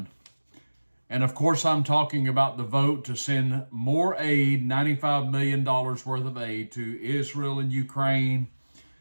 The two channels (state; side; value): inverted; both; correlation -1.00